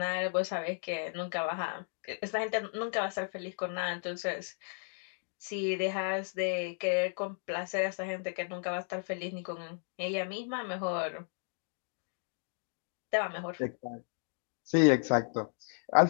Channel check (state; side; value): silent; right; 55 dB below the other